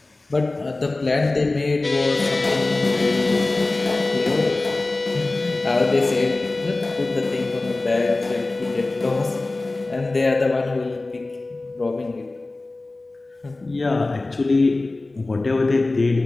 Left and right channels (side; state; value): right; quieter; 3.1 dB